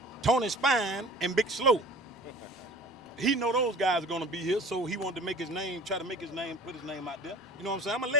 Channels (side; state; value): both; normal; correlation 0.42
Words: Tony's fine and Big Slow. He know those guys are going to be here, so he wanted to make his name, try to make his name, put his name out there. You know what I'm saying? I'm a